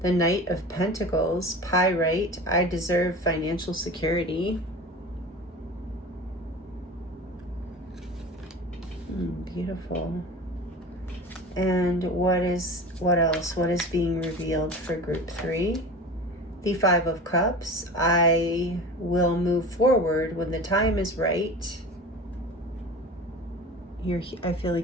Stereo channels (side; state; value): both; normal; correlation 0.35